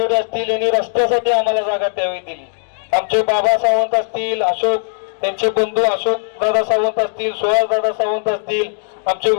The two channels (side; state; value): right; silent; digital silence